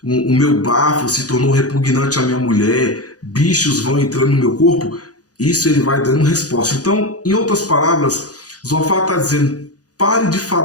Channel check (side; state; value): right; late; 0.67 ms